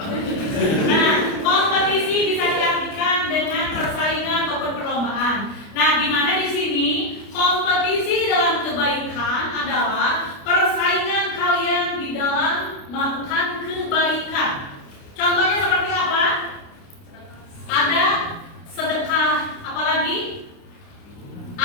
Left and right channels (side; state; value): right; late; 29 ms